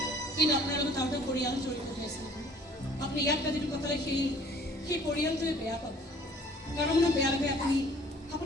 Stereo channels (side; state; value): both; normal; correlation 0.54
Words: কিন্তু আপোনাৰ লগত আৰু এটা পৰিয়াল জড়িত হৈ আছে আপুনি ইয়াত ৰাতিটো কটালে সেই পৰিয়ালটোৱে বেয়া পাব কাৰণ মানে বেয়া লাগে